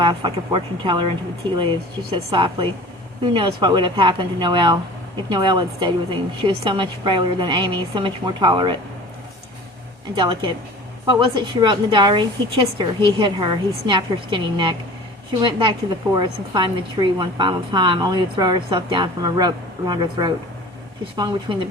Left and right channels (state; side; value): normal; both; correlation 0.41